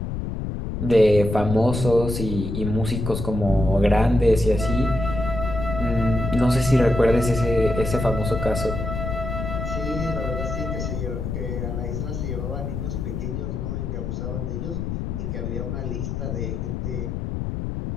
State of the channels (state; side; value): noise; left; rumble, 4 dB below the sound